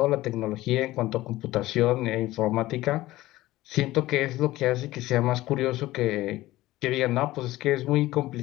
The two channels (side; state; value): right; quieter; 17.1 dB